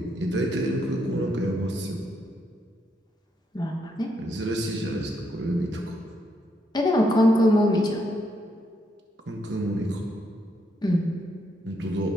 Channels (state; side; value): normal; both; correlation 0.77